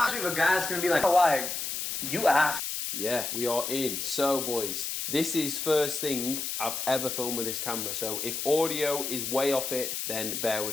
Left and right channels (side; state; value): left; noise; hiss, 3 dB below the sound